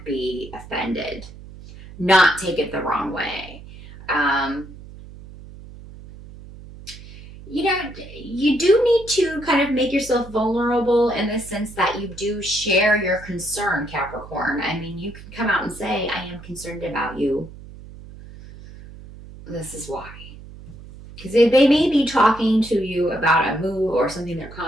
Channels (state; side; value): noise; right; hum, 17 dB below the sound